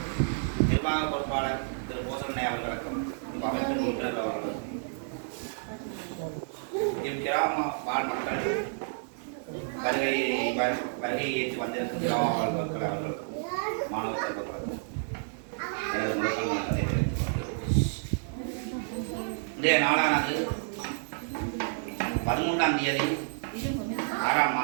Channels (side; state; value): left; silent; digital silence